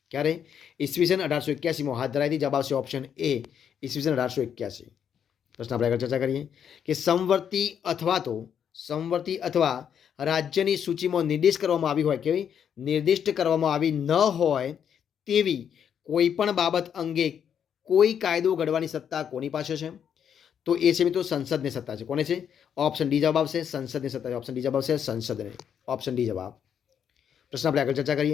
ક્યારે? ઈસવીસન 1881માં હાથ ધરાઈ હતી. જવાબ આવશે ઓપ્શન એ ઈસવીસન 1881. પ્રશ્ન આપણે આગળ ચર્ચા કરીએ કે સમવર્તી અથવા રાજ્યની સૂચિમાં નિર્દિષ્ટ કરવામાં આવી ન હોય તેવી કોઈ પણ બાબત અંગે કોઈ કાયદો ઘડવાની સત્તા કોની પાસે છે? તો એ છે મિત્રો સંસદની સત્તા છે. કોને છે? ઓપ્શન ડી જવાબ આવશે સંસદની સત્તા છે. ઓપ્શન ડી જવાબ આવશે સંસદને. ઓપ્શન ડી જવાબ. પ્રશ્ન આપણે આગળ ચર્ચા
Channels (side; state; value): right; quieter; 8.3 dB